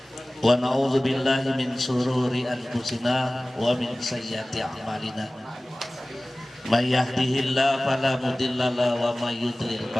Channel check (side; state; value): both; normal; correlation 0.98